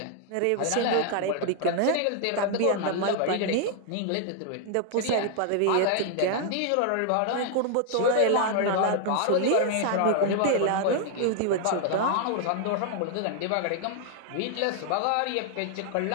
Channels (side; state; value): both; different; correlation 0.00